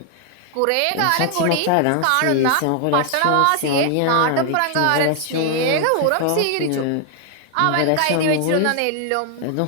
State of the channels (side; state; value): both; different; correlation 0.00